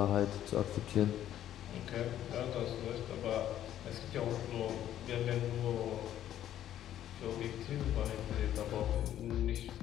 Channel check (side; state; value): right; quieter; 11.6 dB